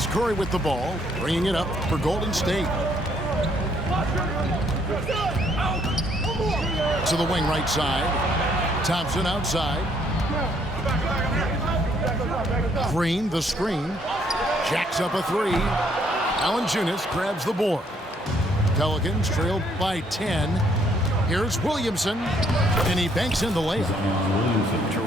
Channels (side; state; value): both; normal; correlation 0.68